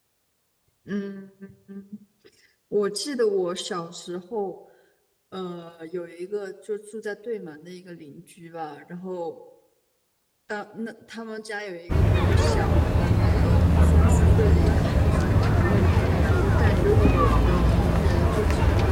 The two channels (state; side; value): identical; both; correlation 1.00